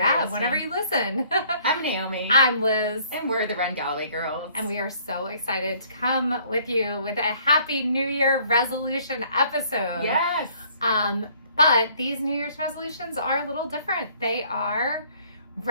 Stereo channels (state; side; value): inverted; both; correlation -0.60